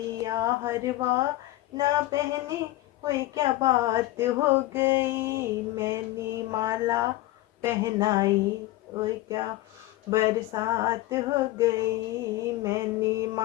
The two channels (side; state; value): right; quieter; 17.0 dB